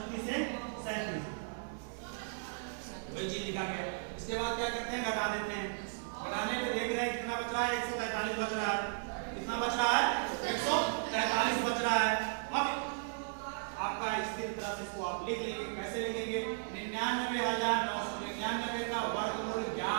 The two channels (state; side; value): silent; left; 54 dB below the other